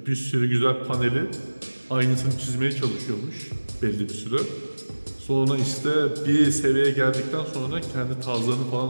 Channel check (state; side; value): inverted; both; correlation -1.00